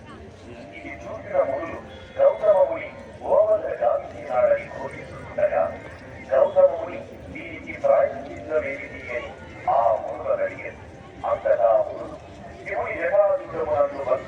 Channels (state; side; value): identical; both; correlation 1.00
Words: ఇది చూసిన మునులు గౌతమముని గోవద గావించినాడని ఘోషిస్తుండగా గౌతమముని దీనికి ప్రాయశ్చిత్తమేమిటి అని ఆ మునులను అడిగారు. అంతటా మునులు శివుని జటాజుటమునందు